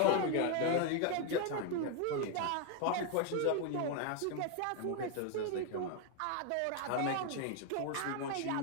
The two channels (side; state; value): both; different; correlation 0.01